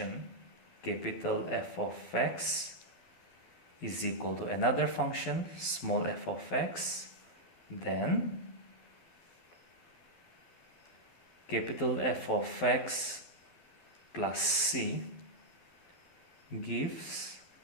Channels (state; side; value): late; right; 11 ms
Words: capital F of x is equal to another function small f of x, then capital F of x plus c gives